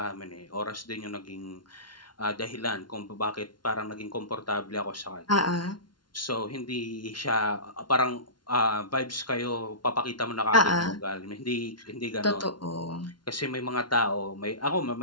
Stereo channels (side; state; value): right; late; 0.71 ms